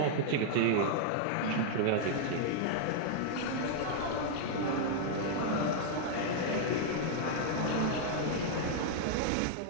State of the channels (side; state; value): both; different; correlation -0.01